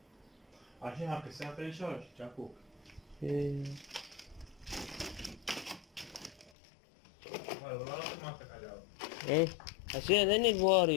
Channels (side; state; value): right; drops out; at 6.5 s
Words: عشان هاك الساعة فريش ولا جاكوك؟ والله ما أعطيك علاوة. ايه عشان ذني